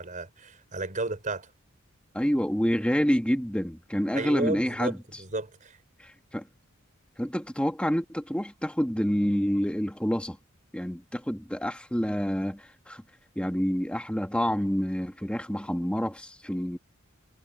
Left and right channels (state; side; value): normal; both; correlation 0.92